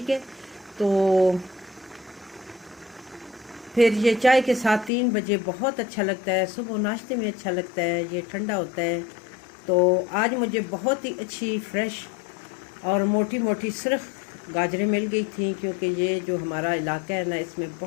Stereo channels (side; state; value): right; drops out; at 4.9 s